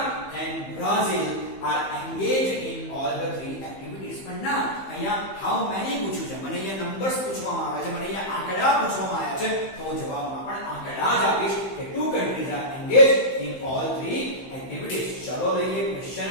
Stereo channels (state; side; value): late; right; 15 ms